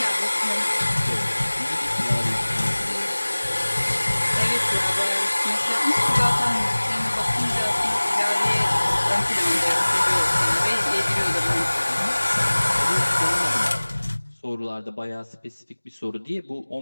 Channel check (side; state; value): both; inverted; correlation -1.00